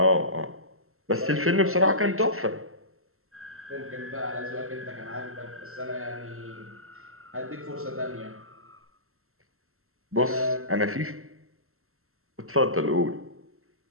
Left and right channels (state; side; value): late; left; 0.62 ms